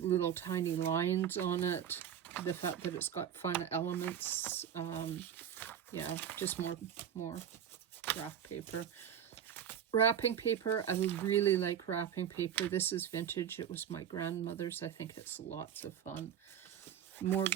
tiny lines on it. The fact that it's got fun elements. Yeah, just more graph paper. Wrapping paper, I really like wrapping paper. This is vintage. It was my grandmother's. I think it's lots of fun. More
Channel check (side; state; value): left; quieter; 9.1 dB